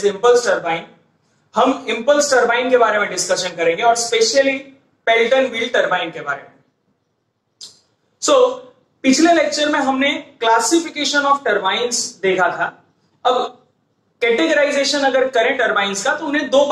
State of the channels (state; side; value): identical; both; correlation 1.00